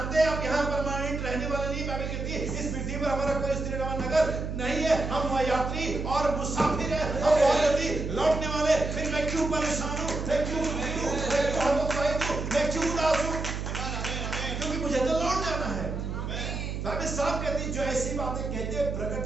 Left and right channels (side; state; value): right; noise; hum, 4 dB below the sound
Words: हैं आप यहाँ परमानेंट रहने वाले नहीं। बाइबल कहती है इस पृथ्वी पर हमारा कोई स्थिर नगर नहीं है, हम यात्री और मुसाफिर हैं, हम बहुत जल्दी लौटने वाले। फिर मैं क्यों परेशान हूँ, मैं क्यों दुखी हूँ, मैं क्यों हतोत्साहित हूँ, मैं क्यों उदास हूँ? क्योंकि मुझे तो लौट जाना है। बाइबल साफ कहती है जो ऐसी बातें कहते हैं